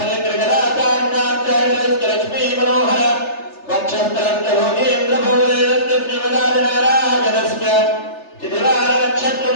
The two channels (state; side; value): late; right; 3.3 ms